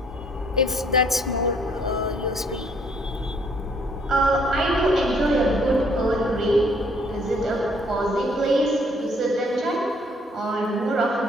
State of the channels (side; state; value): both; normal; correlation 0.64